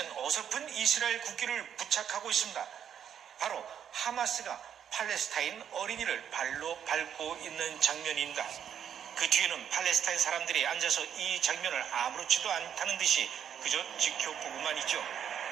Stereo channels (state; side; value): quieter; left; 8.8 dB